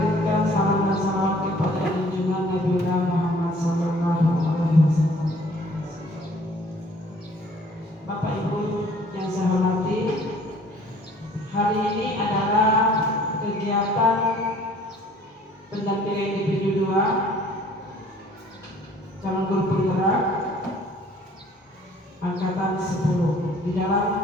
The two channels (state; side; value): normal; both; correlation 0.55